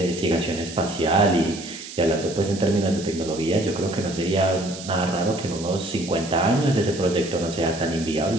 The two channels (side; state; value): right; noise; hiss, 13 dB below the sound